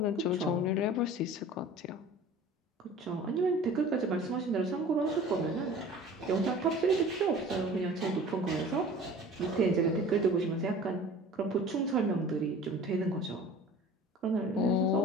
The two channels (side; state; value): both; normal; correlation 0.43